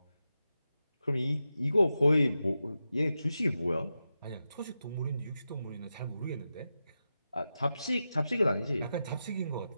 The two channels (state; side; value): inverted; both; correlation -0.90